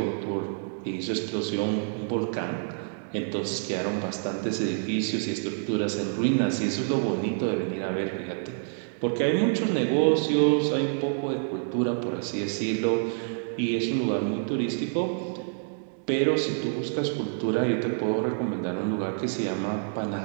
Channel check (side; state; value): left; silent; 60 dB below the other